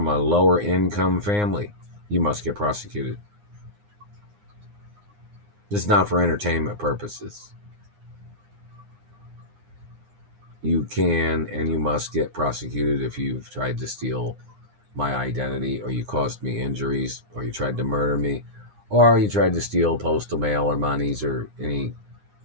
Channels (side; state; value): left; late; 9.7 ms